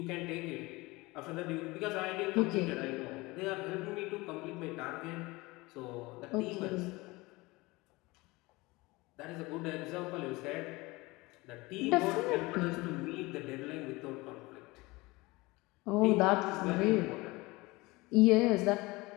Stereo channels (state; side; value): quieter; right; 22.5 dB